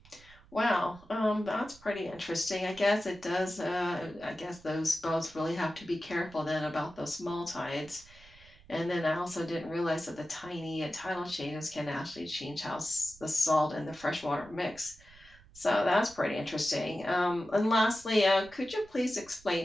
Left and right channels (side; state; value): right; noise; rumble, 25 dB below the sound